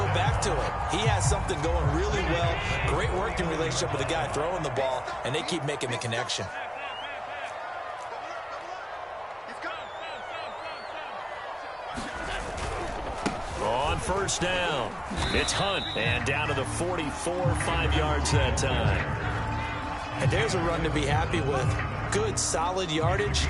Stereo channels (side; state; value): both; identical; correlation 1.00